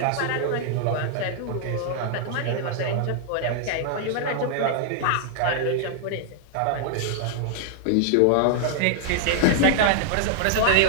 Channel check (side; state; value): both; different; correlation 0.00